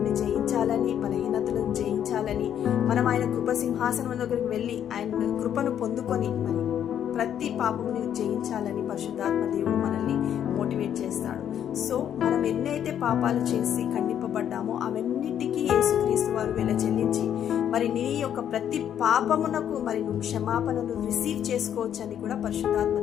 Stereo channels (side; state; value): right; quieter; 9.7 dB